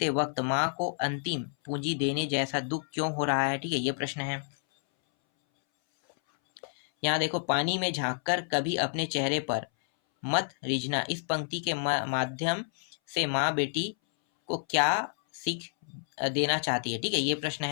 वक्त माँ को अंतिम पूंजी देने जैसा दुख क्यों हो रहा है, ठीक है, ये प्रश्न है। यहाँ देखो पानी में झांककर कभी अपने चेहरे पर मत रिझना, इस पंक्ति के माध्यम से माँ बेटी को क्या सीख देना चाहती है, ठीक है, ये प्रश्न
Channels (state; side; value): silent; right; 58 dB below the other